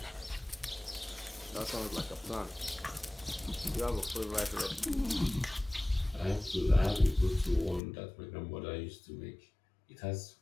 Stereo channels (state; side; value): drops out; right; at 7.8 s